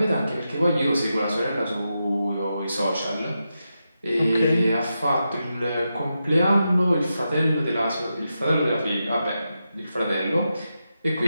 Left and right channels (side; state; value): both; inverted; correlation -0.88